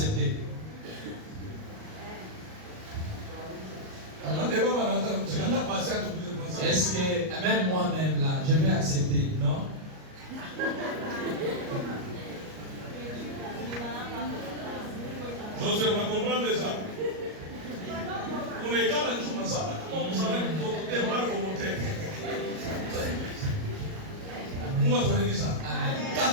Est-ce que même moi-même là, je vais accepter, non? Je vais comprendre déjà. On est quand même dans ça. Comment vous savez que vous êtes mal volontaire? Moi, je vais dire ça.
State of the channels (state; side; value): late; left; 38 ms